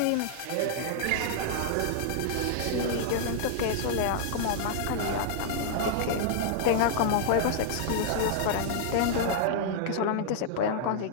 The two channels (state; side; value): different; both; correlation -0.01